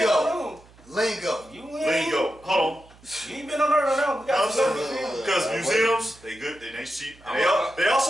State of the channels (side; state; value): right; noise; hum, 26 dB below the sound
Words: Lingo. on Lingo. You ain't. Lingo. Hold on. You ain't been on there now. We got some museums. Because museums, they good, they cheap. And they